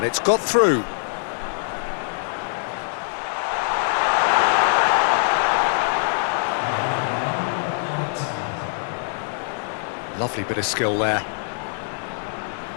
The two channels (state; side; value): silent; right; 63 dB below the other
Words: it's got through. Lovely bit of skill there.